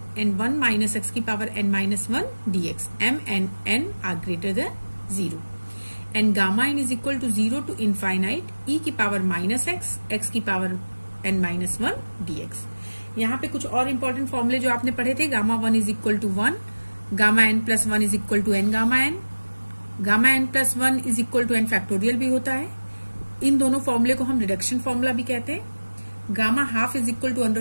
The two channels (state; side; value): inverted; both; correlation -1.00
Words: and 1 minus x की power n minus 1 dx m and n are greater than 0 and gamma n is equal to 0 to infinite e की power minus x की power n minus 1 dx। यहाँ पे कुछ और important फॉर्मूले जो आपने पढ़े थे, gamma 1 is equal to 1, gamma n plus 1 is equal to n gamma n, gamma n plus 1 is equal to n factorial भी होता है। इन दोनों फॉर्मूले को हम रिडक्शन फॉर्मूला भी कहते हैं। Gamma half is equal to